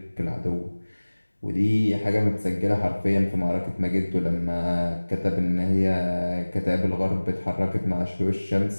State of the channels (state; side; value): inverted; both; correlation -1.00